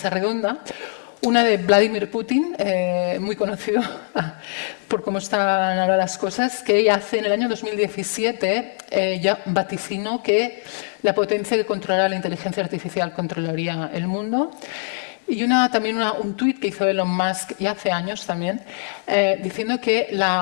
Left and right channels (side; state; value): right; silent; digital silence